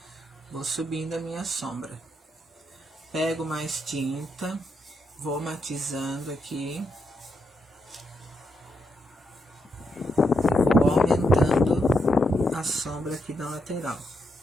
Vou subindo a minha sombra. Pego mais tinta, vou matizando aqui. Vou aumentando a sombra aqui da lateral.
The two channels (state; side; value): normal; both; correlation 0.81